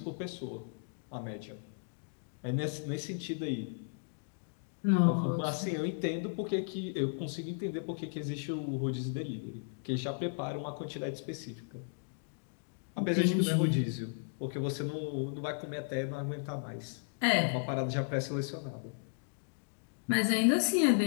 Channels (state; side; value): silent; right; digital silence